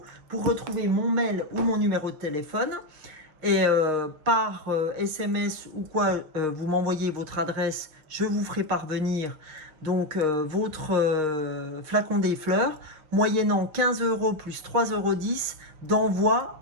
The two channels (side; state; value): left; late; 6.4 ms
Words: pour retrouver mon mail ou mon numéro de téléphone. Et par SMS ou quoi, vous m'envoyez votre adresse, je vous ferai parvenir donc votre flacon des fleurs, moyennant 15 € plus 3,10 € d'envoi